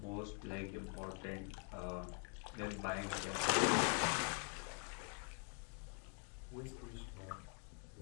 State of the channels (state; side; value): quieter; right; 39.9 dB